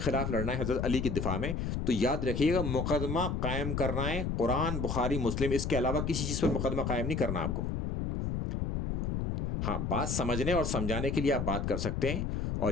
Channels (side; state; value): left; noise; rumble, 1 dB below the sound